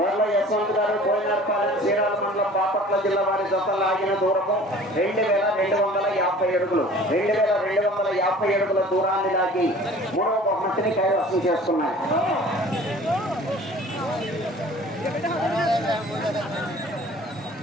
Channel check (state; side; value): normal; both; correlation 0.47